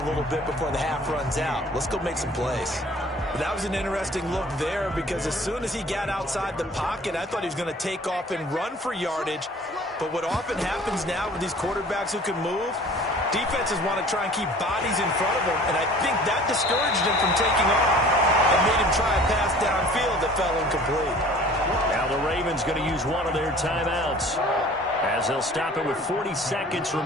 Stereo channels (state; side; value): normal; both; correlation 0.48